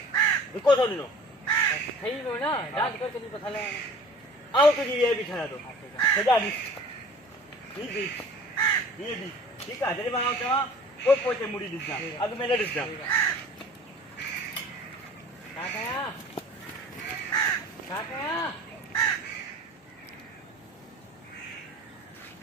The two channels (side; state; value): both; normal; correlation 0.45